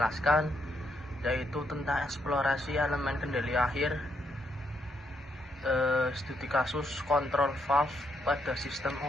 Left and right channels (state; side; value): normal; both; correlation 0.76